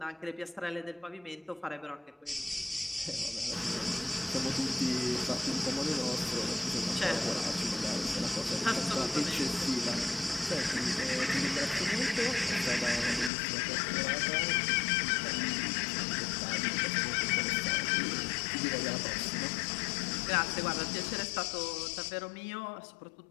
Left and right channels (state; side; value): drops out; right; at 13.3 s